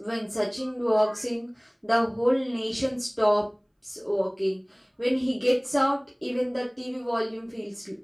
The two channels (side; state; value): both; identical; correlation 1.00